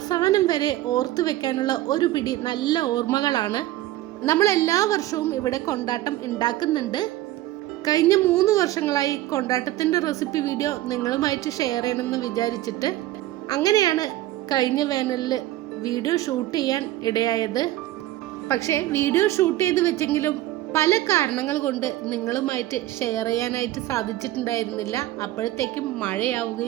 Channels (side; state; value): left; quieter; 15.3 dB